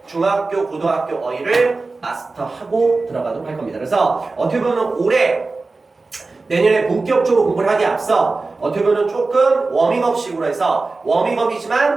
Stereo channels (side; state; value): left; quieter; 3.7 dB